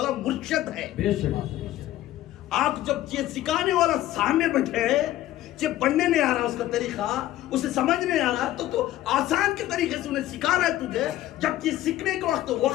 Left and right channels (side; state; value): right; quieter; 14.4 dB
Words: مرشد ہے. آپ جب یہ سکھانے والا سامنے بیٹھے, یہ پڑھنے نہیں آ رہا اس کا طریقہ, اسے سمجھ نہیں آ رہا, تو آسان کے طریقے سے انہیں سکھا رہا ہے تجھے. جب یہ سیکھنے کا